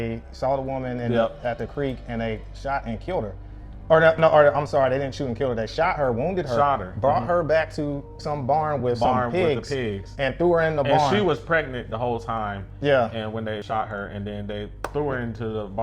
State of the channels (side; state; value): both; identical; correlation 1.00